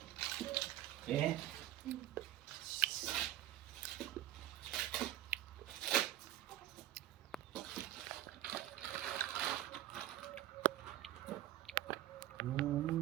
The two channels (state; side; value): quieter; left; 13.4 dB